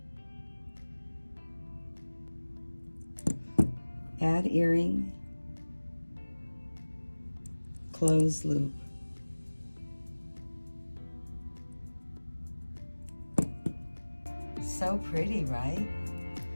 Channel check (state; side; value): inverted; both; correlation -1.00